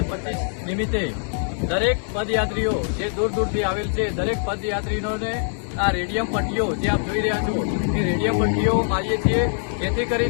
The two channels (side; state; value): right; silent; digital silence